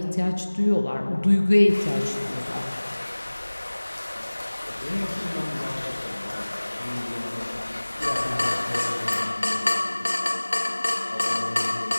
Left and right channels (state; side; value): inverted; both; correlation -1.00